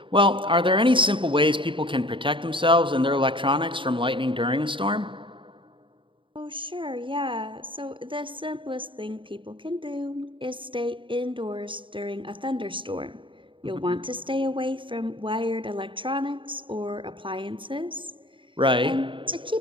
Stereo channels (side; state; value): left; late; 0.24 ms